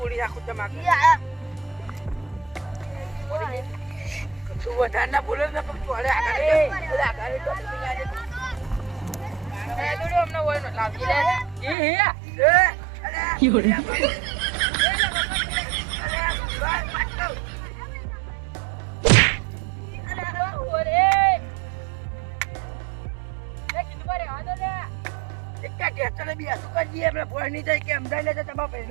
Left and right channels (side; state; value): left; drops out; at 11.8 s